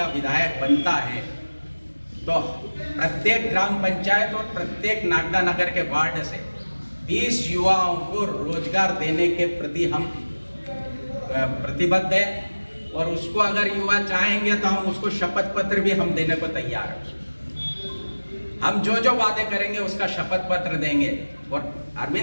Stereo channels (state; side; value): inverted; both; correlation -1.00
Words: विधायक बनता है तो प्रत्येक ग्राम पंचायत और प्रत्येक नागदा नगर के वार्ड से 20 युवाओं को रोजगार देने के प्रति हम प्रतिबद्ध है, और उसको अगर युवा चाहेंगे तो हम उसको शपथ पत्र भी हम देने को तैयार हैं। हम जो जो वादे करेंगे उसका शपथ पत्र देंगे। और